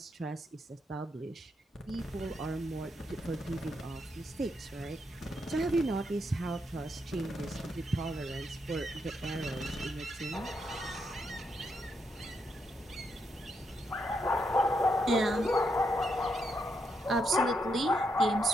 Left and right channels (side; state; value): both; normal; correlation 0.80